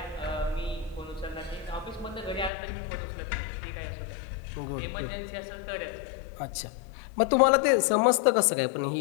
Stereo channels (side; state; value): right; drops out; at 2.5 s